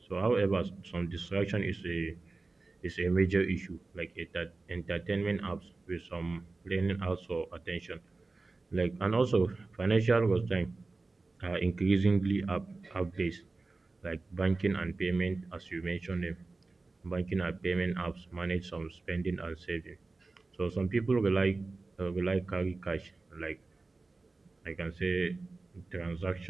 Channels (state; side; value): quieter; left; 3.5 dB